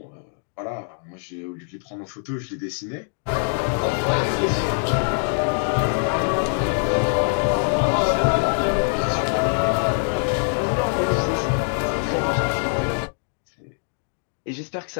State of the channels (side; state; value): right; silent; 60 dB below the other